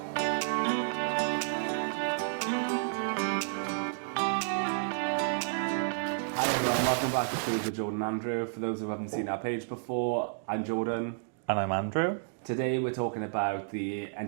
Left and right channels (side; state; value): left; silent; digital silence